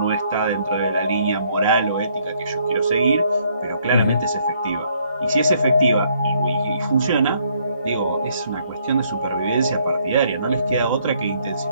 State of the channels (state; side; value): inverted; both; correlation -0.68